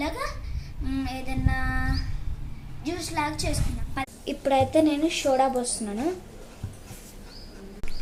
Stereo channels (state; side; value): identical; both; correlation 1.00